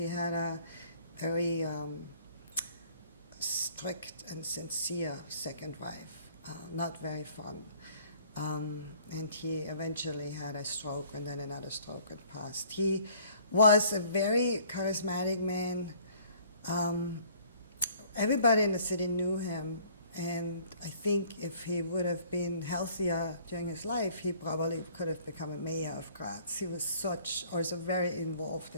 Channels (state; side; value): inverted; both; correlation -0.56